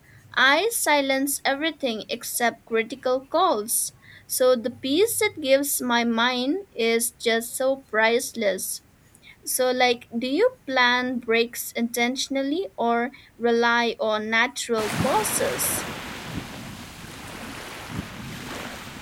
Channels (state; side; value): identical; both; correlation 1.00